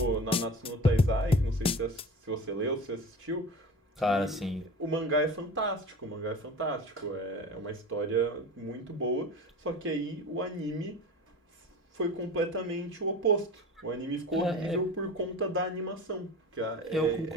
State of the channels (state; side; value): normal; both; correlation 0.34